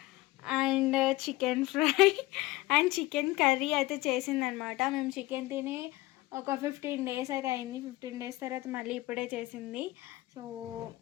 and chicken fry and chicken curry అయితే చేసిందనమాట. మేము చికెన్ తిని ఒక 15 days అయితే అయింది. 15 days తర్వాత మళ్ళీ ఇప్పుడే చేసింది. సో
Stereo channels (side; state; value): right; quieter; 19.2 dB